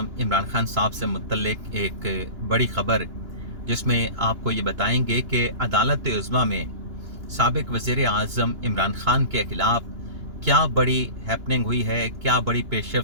इमरान खान साहब से मुतल्लिक़ एक बड़ी ख़बर, जिसमें आपको ये बताएंगे कि अदालत उज़्मा में साबिक़ वज़ीर आज़म इमरान खान के ख़िलाफ़ क्या बड़ी हैपनिंग हुई है, क्या बड़ी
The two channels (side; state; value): left; late; 2.9 ms